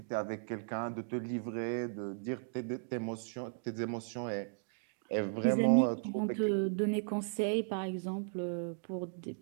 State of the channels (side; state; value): left; silent; digital silence